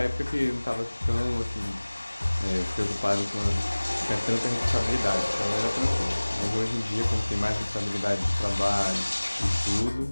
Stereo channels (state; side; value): inverted; both; correlation -1.00